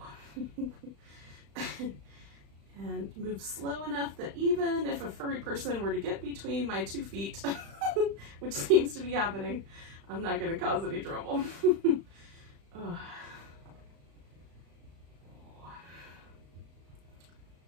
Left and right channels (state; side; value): late; left; 35 ms